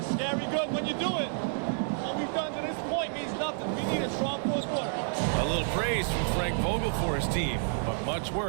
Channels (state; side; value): silent; left; digital silence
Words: scary good when you do it. What we've done to this point means nothing. We need a strong fourth quarter. A little praise from Frank Vogel for his team, but much